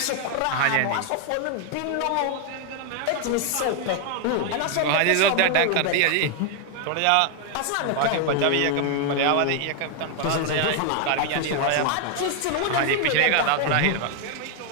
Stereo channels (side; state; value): both; different; correlation 0.00